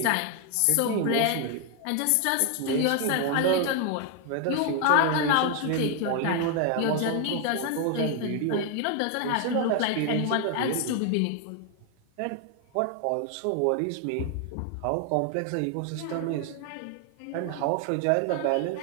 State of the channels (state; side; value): different; both; correlation 0.01